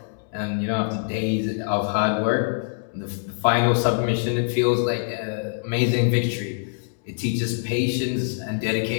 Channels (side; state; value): right; silent; digital silence